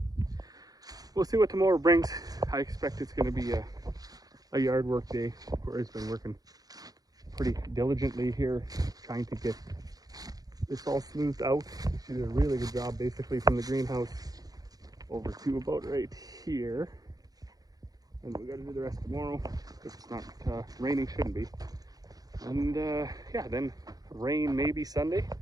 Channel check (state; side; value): late; left; 0.18 ms